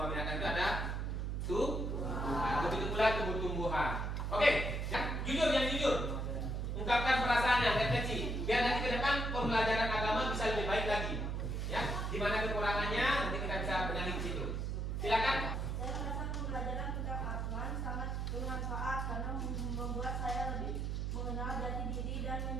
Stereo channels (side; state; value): right; noise; hum, 1 dB below the sound